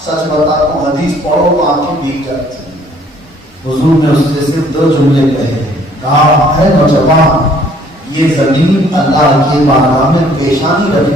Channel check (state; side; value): normal; both; correlation 0.59